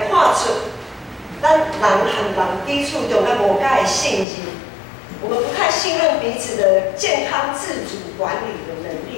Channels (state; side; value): drops out; right; at 4.2 s